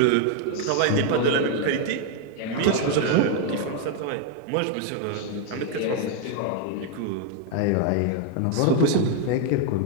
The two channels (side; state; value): both; different; correlation 0.00